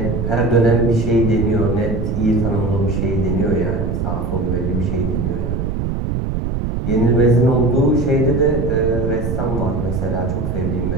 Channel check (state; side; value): noise; right; rumble, 1 dB below the sound